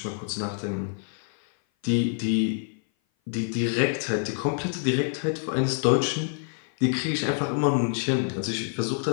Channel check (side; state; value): right; silent; 57 dB below the other